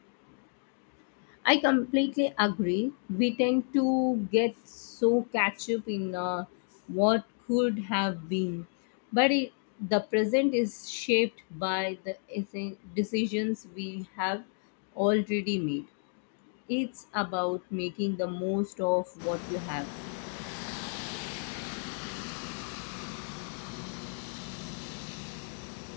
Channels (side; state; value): right; silent; 57 dB below the other